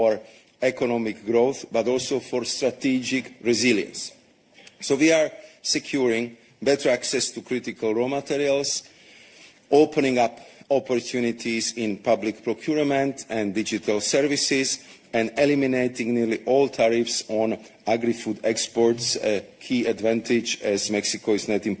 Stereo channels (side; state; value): both; identical; correlation 1.00